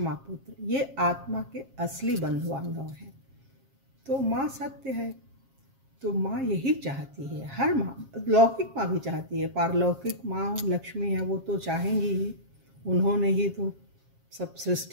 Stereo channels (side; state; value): left; late; 7.4 ms